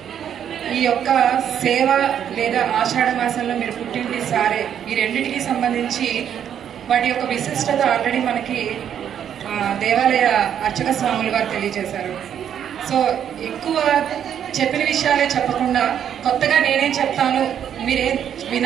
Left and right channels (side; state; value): left; quieter; 9.2 dB